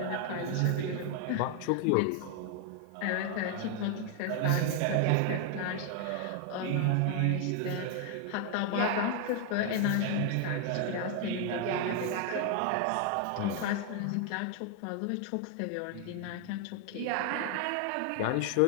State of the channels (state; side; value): different; both; correlation 0.00